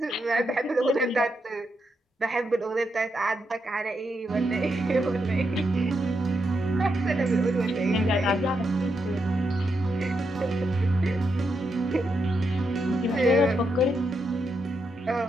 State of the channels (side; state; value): both; normal; correlation 0.82